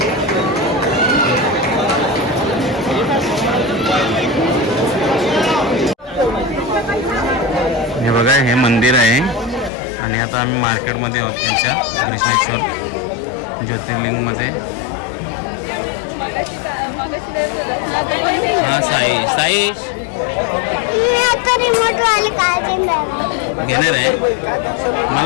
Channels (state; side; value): drops out; right; at 9.7 s